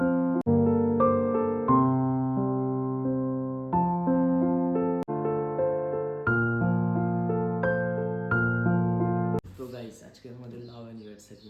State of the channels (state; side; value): identical; both; correlation 1.00